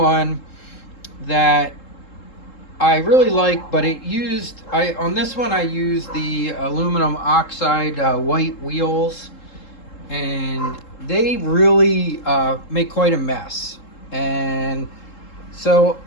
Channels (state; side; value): late; right; 3.7 ms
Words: that I really like, but on this one I used the aluminum oxide white wheels, and they really make quite a mess. And so